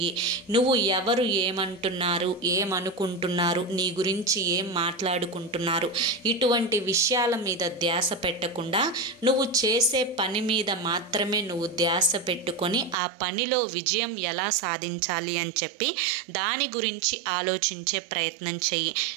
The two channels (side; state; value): left; drops out; at 13.0 s